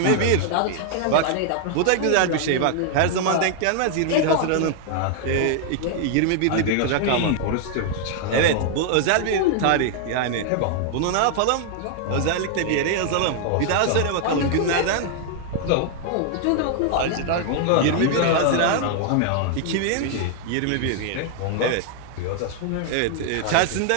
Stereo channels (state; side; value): different; both; correlation 0.00